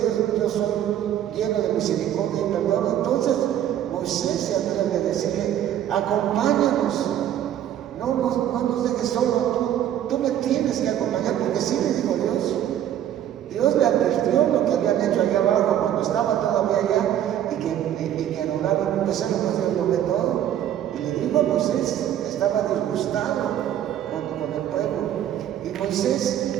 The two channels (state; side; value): quieter; left; 11.0 dB